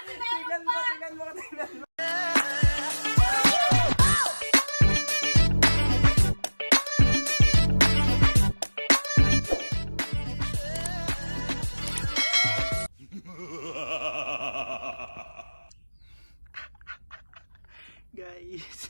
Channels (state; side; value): inverted; both; correlation -1.00